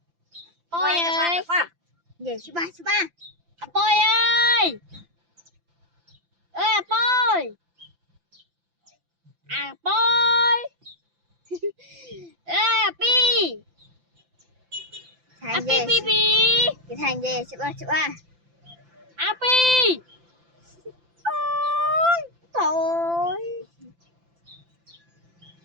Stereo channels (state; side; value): late; left; 5.9 ms